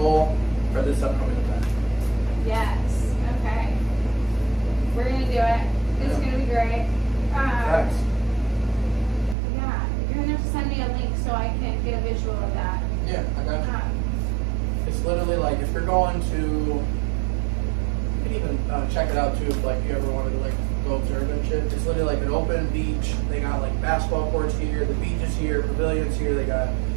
for this upcoming event. Yes. Okay. We're gonna do it. It's gonna be great. Thanks. Yeah. You're gonna have to send me a link so I can get a visual of that. Yeah, I got you. It's literally like if you're going to, you can even check it out too if like you ever wanted to like go observe and shit. It's literally like an open beach. They got like basketball courts here, the beach is here, pavilions here. They got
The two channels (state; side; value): drops out; left; at 9.3 s